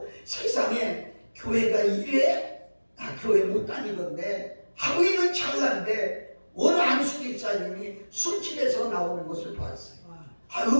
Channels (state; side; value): inverted; both; correlation -1.00